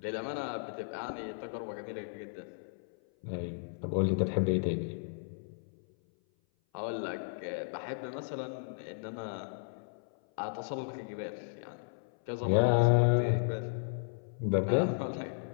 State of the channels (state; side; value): silent; right; 55 dB below the other